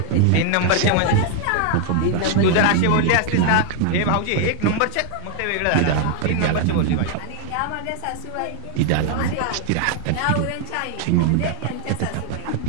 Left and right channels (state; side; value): different; both; correlation 0.00